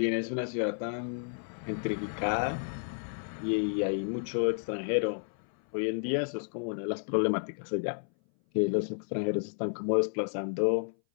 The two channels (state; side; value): silent; right; 57 dB below the other